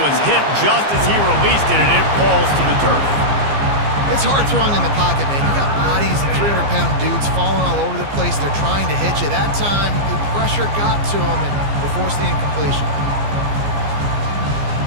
was hit just as he released it, and it falls to the turf. It's hard throwing in the pocket, man. You got bodies and 300-pound dudes falling all over the place. They're trying to hit you. That time, the pressure got to him, and they forced the incompletion.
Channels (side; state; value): left; late; 15 ms